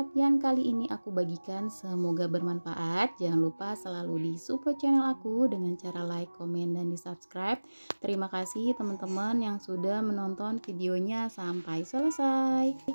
yang kali ini aku bagikan, semoga bermanfaat. Jangan lupa selalu di support channel aku dengan cara like, komen, dan di subscribe. Terima kasih teman-teman yang sudah menonton videonya sampai selesai.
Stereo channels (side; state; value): both; inverted; correlation -1.00